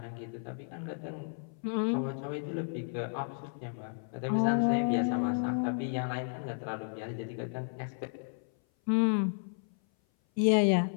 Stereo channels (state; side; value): silent; right; 56 dB below the other